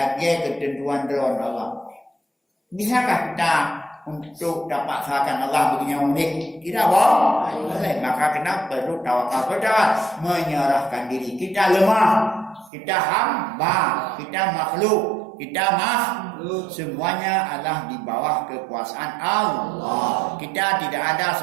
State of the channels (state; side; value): drops out; left; at 12.7 s